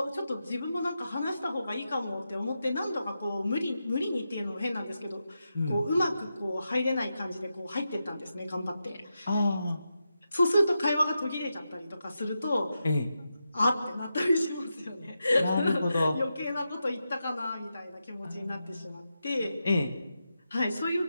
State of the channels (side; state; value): both; inverted; correlation -0.88